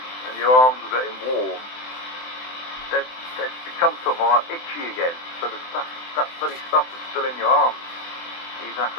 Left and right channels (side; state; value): right; late; 24 ms